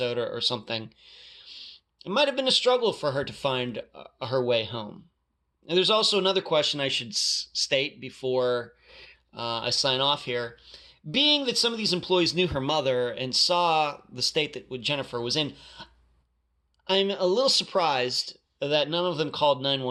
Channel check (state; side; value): identical; both; correlation 1.00